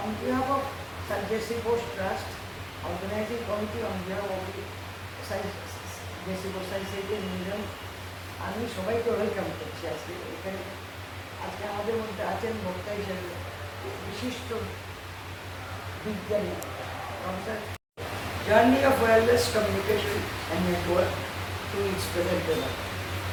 on behalf of Sir J.C. Bose Trust, Organizing Committee on behalf of the J.C. Bose Science Museum, আমি সবাইকে ওয়েলকাম করছি আজকে এখানে আজকে আমাদের মধ্যে আছেন বক্তা হিসেবে বিশিষ্ট বিজ্ঞানী professor journey of wireless communication and network to its present level.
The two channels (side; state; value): both; identical; correlation 1.00